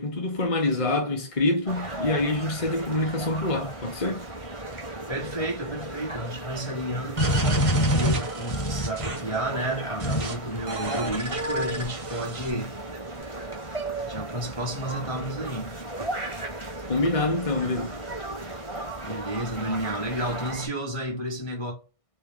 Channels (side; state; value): right; late; 1.6 ms